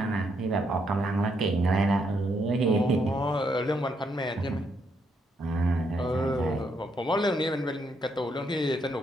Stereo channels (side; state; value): both; normal; correlation 0.76